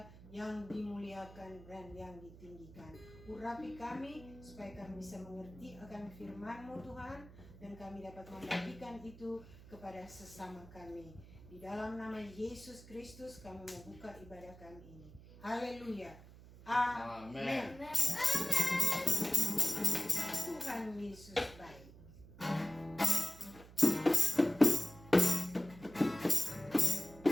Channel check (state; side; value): noise; right; hum, 19 dB below the sound